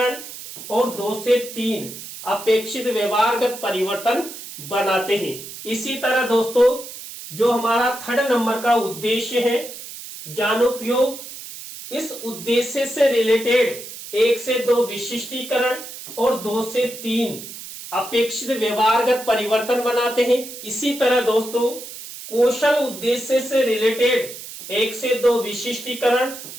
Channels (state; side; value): noise; right; hiss, 12 dB below the sound